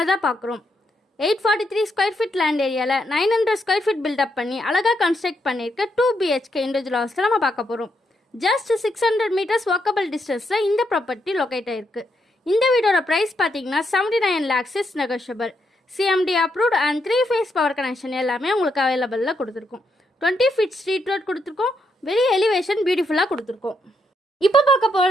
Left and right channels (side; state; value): both; normal; correlation 0.79